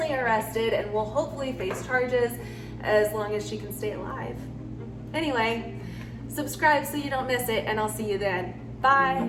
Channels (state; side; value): identical; both; correlation 1.00